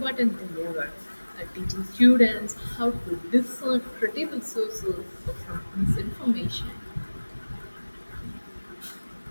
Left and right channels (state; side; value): inverted; both; correlation -1.00